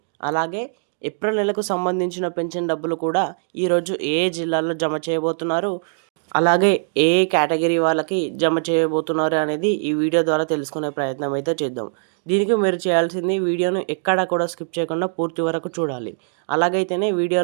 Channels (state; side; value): silent; left; digital silence